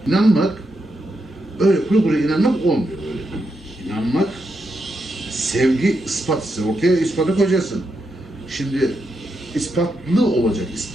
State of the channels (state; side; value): normal; both; correlation 0.84